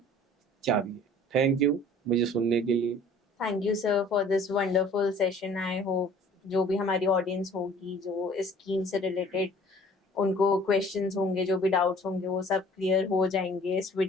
चाबी है। थैंक यू मुझे सुनने के लिए। Thank you sir for this wonderful session. I hope जो भी हमारी ऑडियंस होगी, जो इस स्कीम से रिलेटेड उनको क्वेश्चंस होंगे, जो भी डाउट्स होंगे, वो सब क्लियर हो जाएंगे इस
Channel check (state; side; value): normal; both; correlation 0.51